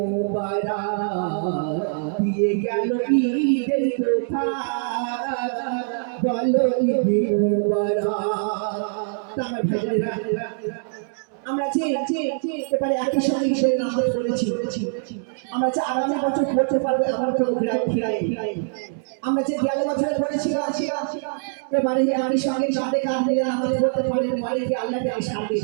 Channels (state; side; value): silent; left; digital silence